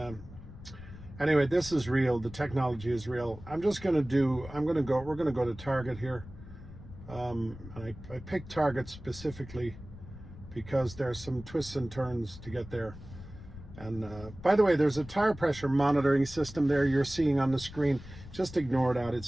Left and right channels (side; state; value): left; noise; rumble, 15 dB below the sound